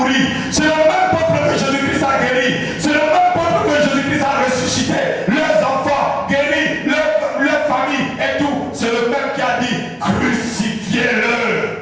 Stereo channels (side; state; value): both; identical; correlation 1.00